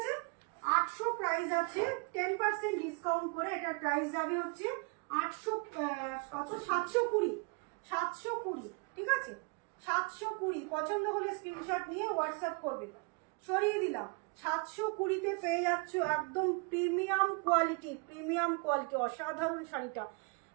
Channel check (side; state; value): left; quieter; 33.0 dB